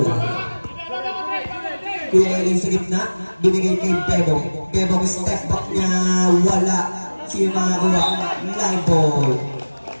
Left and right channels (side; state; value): both; inverted; correlation -1.00